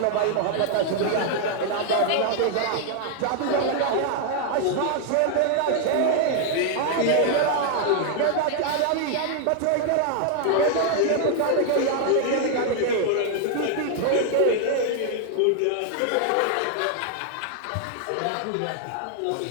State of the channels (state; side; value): different; both; correlation 0.00